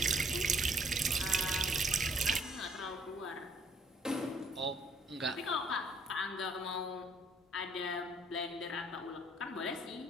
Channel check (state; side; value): normal; both; correlation 0.62